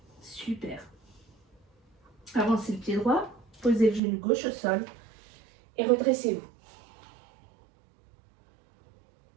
Super. Avancez le pied droit, posez le genou gauche au sol et redressez-vous.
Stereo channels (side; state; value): left; drops out; at 4.0 s